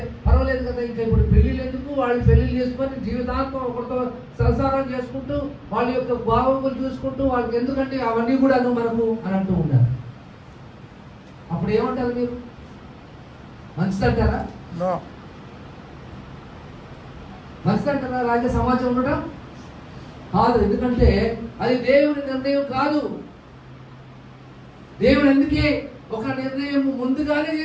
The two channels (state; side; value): identical; both; correlation 1.00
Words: పర్వాలేదు కదా. ఇంకా ఇప్పుడు పెళ్ళిళ్ళు ఎందుకు, వాళ్ళు పెళ్ళిళ్ళు చేసుకొని జీవితాంతం ఒకరితో సంసారం చేసుకుంటూ వాళ్ళ యొక్క భావములు చూసుకుంటూ వాళ్ళకి ఎందుకంటే అవన్నీ కూడా మనకు అని అంటూ ఉంటారు. అప్పుడు ఏమంటారు మీరు? మంచిదంటారా? మంచిదంటారా రాజ్య సమాజం ఉండటం? కాదు. ఎందుకంటే అది దేవుని నిర్ణయం కాదు. దేవుడు ఎందుకే ఒక నిర్ణయం ముందుగానే